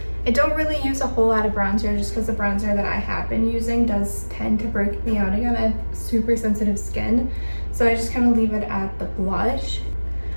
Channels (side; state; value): both; inverted; correlation -1.00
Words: I don't really use a whole lot of bronzer just because the bronzer that I have been using does tend to break me out again. I have super sensitive skin, so I just kind of leave it at the blush.